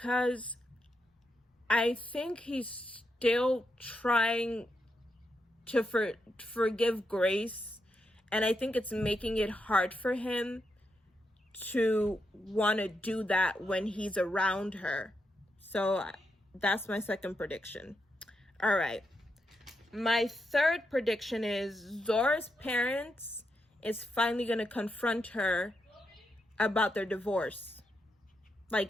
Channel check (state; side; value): normal; both; correlation 0.83